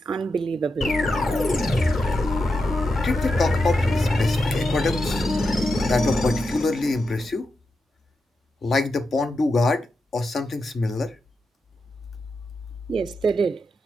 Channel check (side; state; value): both; normal; correlation 0.87